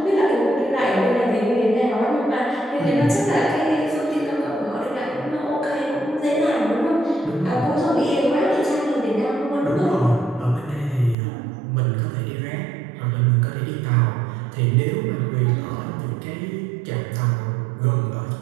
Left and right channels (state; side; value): drops out; left; at 11.2 s